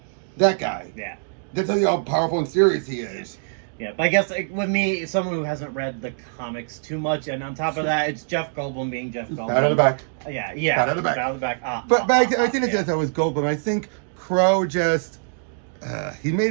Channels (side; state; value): left; silent; digital silence